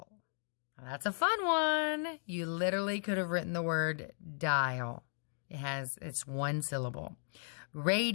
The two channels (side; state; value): right; silent; 54 dB below the other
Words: Now, that's a fun one. You literally could have written the word dial. It's one syllable.